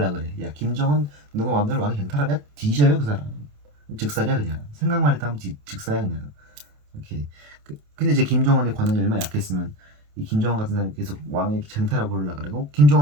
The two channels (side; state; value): left; late; 28 ms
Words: 그래. 야 김정은 누가 마음대로 왕이 쟁탈하냐? 뒤져요 그 사람. 즉살이야 그냥. 생각만 했다 하면 즉사야 그냥. 이렇게 근데 이제 김정은의 권한이 얼마나 약했으면 이 김정은 같은 사람이 계속 왕의 쟁탈하고 그러려 그러고